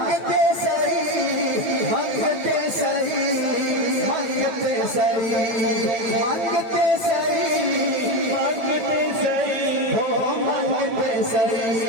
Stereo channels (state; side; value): late; left; 9.0 ms